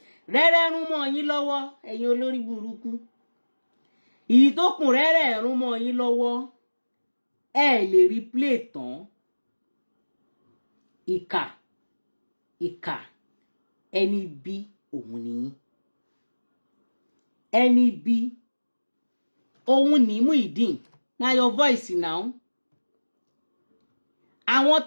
Rẹ́rẹ́ rún mọ́ yín lọ́wọ́ ẹ̀yin olórí burúkú. Ìtókùn rẹ́rẹ́ rún mọ́ yín lọ́wọ́. Ẹ lè rí play tán. Ìkà ẹni bí òun nìyí. Ẹni bí òun ní Muyideen. Na your voice now. Àwọn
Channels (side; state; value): both; inverted; correlation -1.00